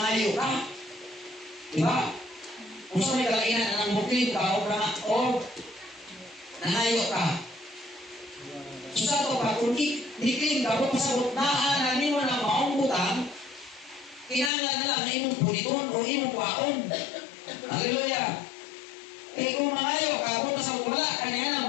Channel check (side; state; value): right; drops out; at 14.5 s